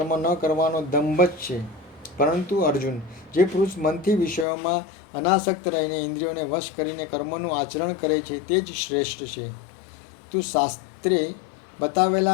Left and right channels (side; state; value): right; drops out; at 4.5 s